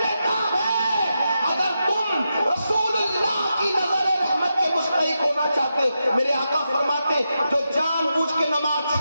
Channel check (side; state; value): both; inverted; correlation -0.87